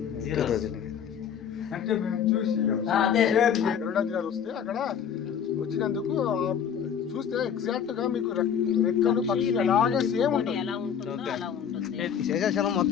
అంటే మేము చూసి వస్తే అక్కడ వచ్చినందుకు చూస్తే ఎగ్జాక్ట్ గా మీకు రెక్కలు పక్షులు అలాగే సేమ్ ఉంటుంది. శేషాచలం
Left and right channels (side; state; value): right; quieter; 8.1 dB